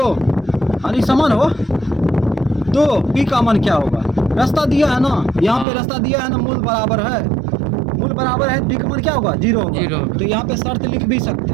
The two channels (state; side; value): drops out; left; at 5.7 s